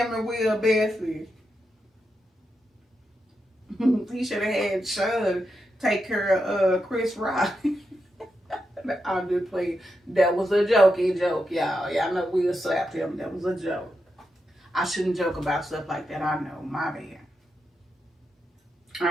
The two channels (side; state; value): both; normal; correlation 0.86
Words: and Will besties. He should have had Sean take care of Chris Rock. I'm just playing. That was a jokey joke, y'all. Y'all know Will slapped him. That was a joke. I shouldn't joke about stuff like that. I know, my bad.